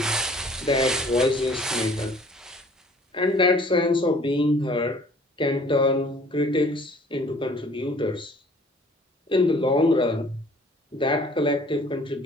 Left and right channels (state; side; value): normal; both; correlation 0.53